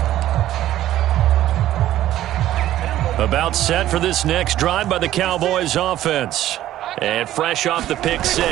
about set for this next drive by the Cowboys offense. And fresh off the pick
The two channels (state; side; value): quieter; left; 13.4 dB